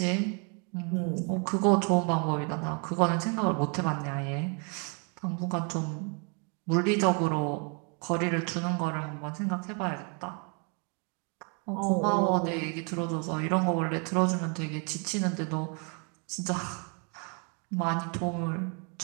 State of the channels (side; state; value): left; quieter; 36.6 dB